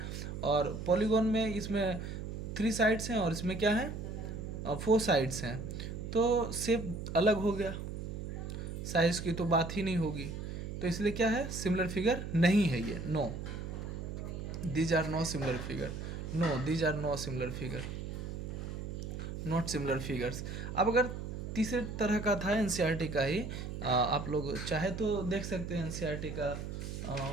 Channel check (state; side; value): noise; right; hum, 6 dB below the sound